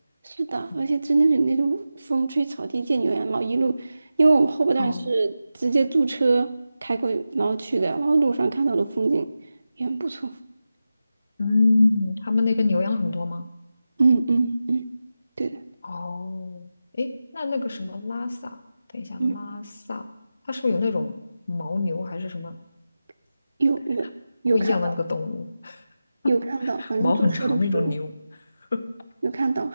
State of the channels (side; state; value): both; inverted; correlation -0.93